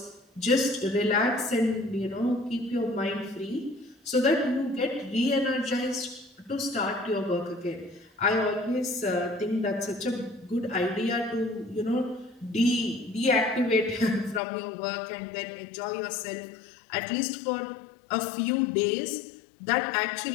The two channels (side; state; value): right; drops out; at 14.4 s